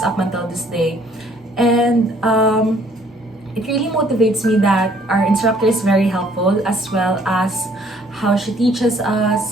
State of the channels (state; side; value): normal; both; correlation 0.61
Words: up until this day. And it really motivates me that our instructor is very helpful, as well as how she teaches